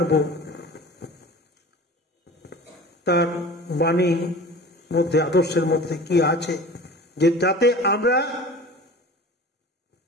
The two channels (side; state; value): both; normal; correlation 0.40